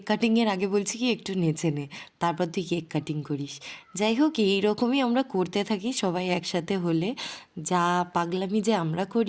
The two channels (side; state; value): both; identical; correlation 1.00